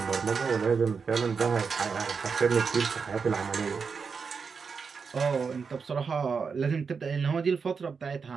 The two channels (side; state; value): left; quieter; 5.5 dB